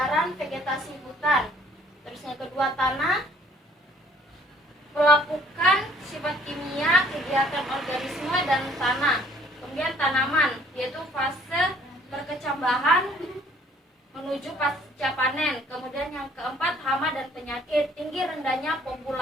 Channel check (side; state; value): both; normal; correlation 0.59